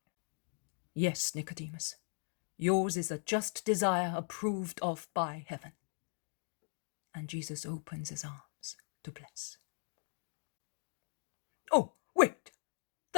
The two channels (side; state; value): right; silent; 52 dB below the other